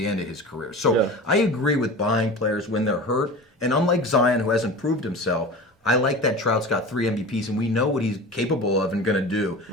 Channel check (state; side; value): normal; both; correlation 0.33